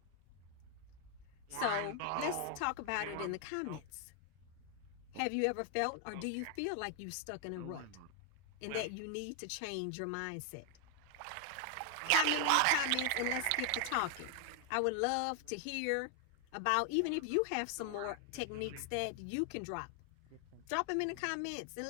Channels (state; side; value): different; both; correlation 0.00